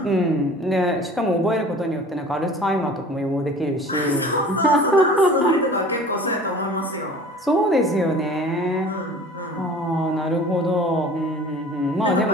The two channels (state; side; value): normal; both; correlation 0.44